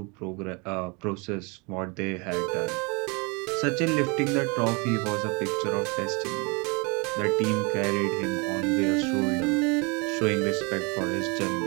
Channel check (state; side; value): quieter; left; 30.0 dB